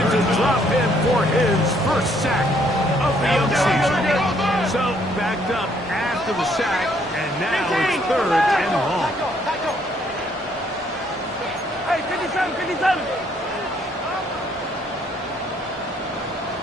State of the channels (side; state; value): both; normal; correlation 0.67